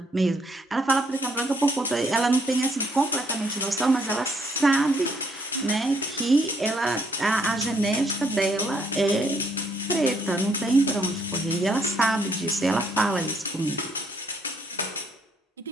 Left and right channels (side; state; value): both; normal; correlation 0.69